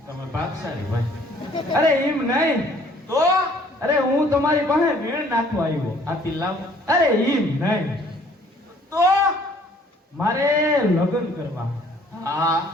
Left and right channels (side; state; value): both; normal; correlation 0.58